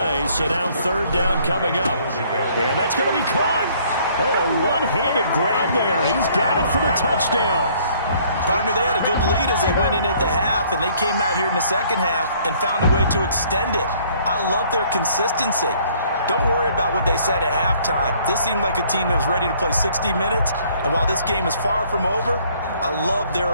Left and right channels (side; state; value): both; inverted; correlation -0.60